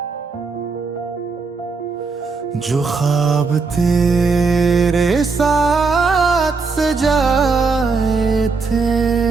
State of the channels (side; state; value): left; quieter; 4.5 dB